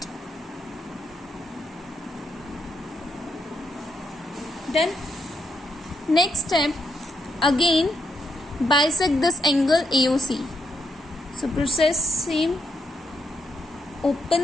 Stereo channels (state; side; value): normal; both; correlation 0.79